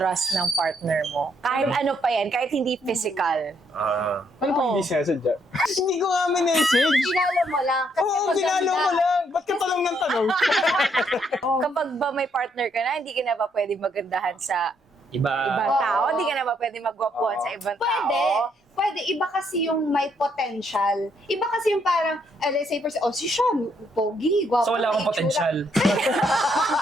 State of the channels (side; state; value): both; normal; correlation 0.72